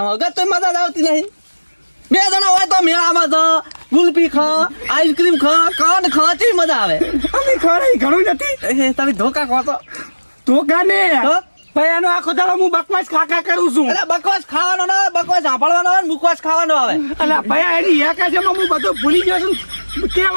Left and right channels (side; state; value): both; inverted; correlation -1.00